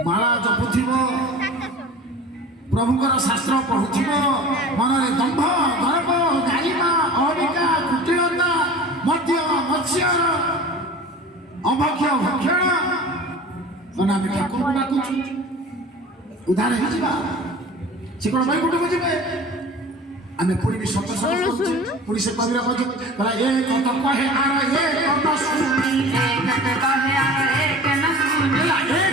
ଜପୁଥିବ ପ୍ରଭୁଙ୍କର ଶାସ୍ତ୍ର ପଢୁଥିବ ମନରେ ଦମ୍ଭ ଗର୍ବ ଗାରିମା ଅହମିକା କୁଟିଳତା ମଦ୍ୟ ମତ୍ସ୍ୟ ଅଭକ୍ଷ ଭକ୍ଷଣ ଆମେ ଠାକୁରଙ୍କୁ ଡାକୁଛୁ ଉଦ୍ଧାର ହେଇଯିବା ସେ କ'ଣ ବୈକୁଣ୍ଠକୁ ଯିବେ ଆମେ ପୁଣି ବି ସତ ପୁଣି ସେ କବିର କହିଲା ଏ କଥା କହେ ଆର ଏ କଥା ଶୁଣି एक कहे आर एक न सुनी ଏ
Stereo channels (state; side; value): normal; both; correlation 0.40